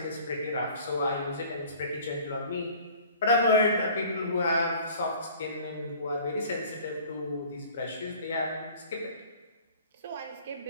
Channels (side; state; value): both; inverted; correlation -0.49